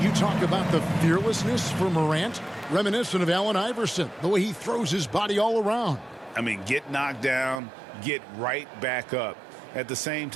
you talk about the fearlessness for Morant, reminiscent of Allen Iverson, the way he throws his body all around. I mean, get knocked down, get right back up. At the same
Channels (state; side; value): drops out; left; at 7.6 s